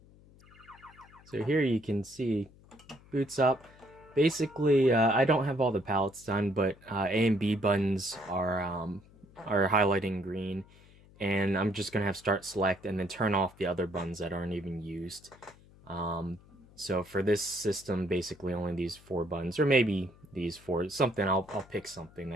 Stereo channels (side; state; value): left; noise; hum, 25 dB below the sound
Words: So here you can see, boots up. Basically, I don't have all the palettes done, but A and B buttons are highlighting green, and I'm just gonna have start select and then turn off the other buttons that aren't even used. Um, so for this system, basically only these 4 buttons, or maybe these 4. Something I'll pick something